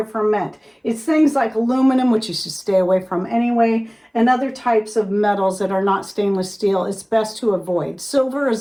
ferment. It's things like aluminum, which you should stay away from anyway, and other types of metals that are not stainless steel. It's best to avoid. Silver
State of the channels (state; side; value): identical; both; correlation 1.00